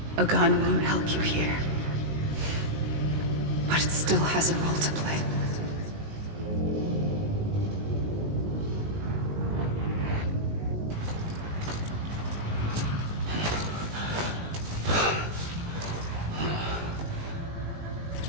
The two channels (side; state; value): left; late; 19 ms